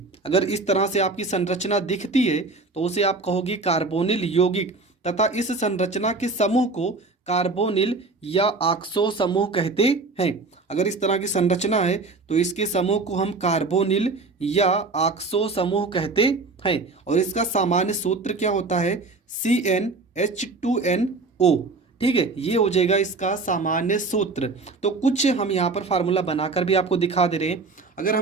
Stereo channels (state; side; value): quieter; left; 3.7 dB